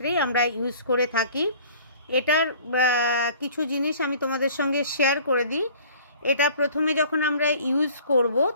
আমরা ইউজ করে থাকি। এটার কিছু জিনিস আমি তোমাদের সঙ্গে শেয়ার করে দিই। এটা প্রথমে যখন আমরা ইউজ করব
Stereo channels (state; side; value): inverted; both; correlation -0.50